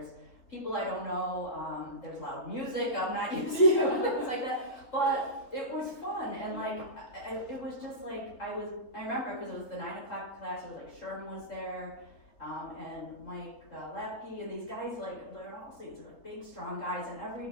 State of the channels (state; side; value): late; right; 3.9 ms